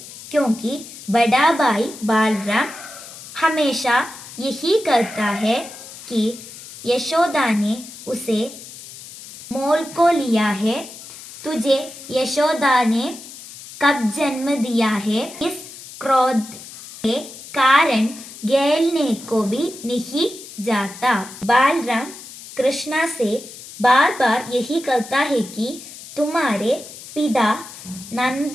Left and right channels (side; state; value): left; noise; hiss, 15 dB below the sound